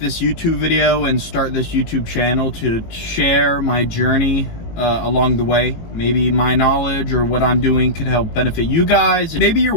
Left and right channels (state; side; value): late; right; 18 ms